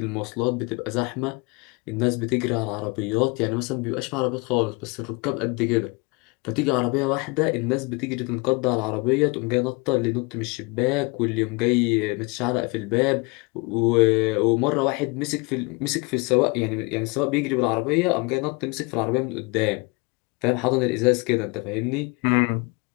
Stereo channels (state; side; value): quieter; right; 28.5 dB